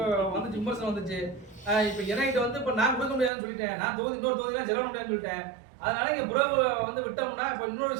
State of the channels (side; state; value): left; drops out; at 3.3 s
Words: வந்துச்சு, விமர்சனம் வந்துச்சு. இப்ப என்கிட்ட வந்து இப்ப நான் கொடுக்க முடியாதுன்னு சொல்லிட்டேன். நான் இன்னொரு தொகுதியெல்லாம் செலவு முடியாதுன்னு சொல்லிட்டேன். அதனால இங்க புறவு வந்து விட்டோம்னா இப்ப இன்னொரு